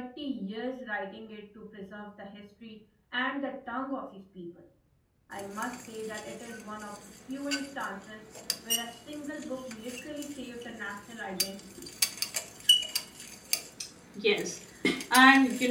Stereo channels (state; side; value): identical; both; correlation 1.00